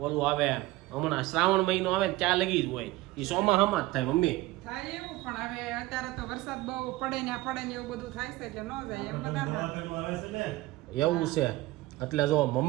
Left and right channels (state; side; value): quieter; left; 18.6 dB